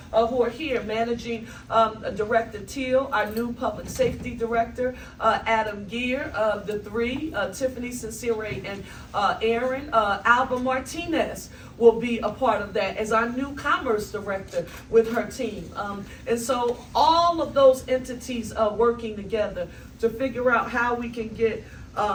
who are here, managing Director Teal, our new public safety director, Adam Gear, the three, Tiffany Sincere and Aaron, Alba Martinez will be a part of that as our new commerce director with her team. And so all of those entities are working together to figure out how we can get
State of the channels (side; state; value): both; identical; correlation 1.00